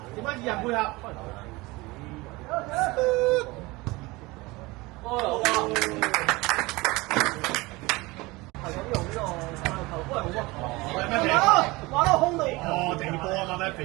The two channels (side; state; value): left; quieter; 22.6 dB